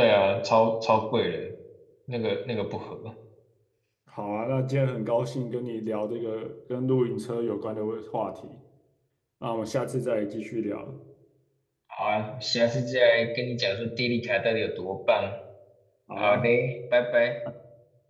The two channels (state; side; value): identical; both; correlation 1.00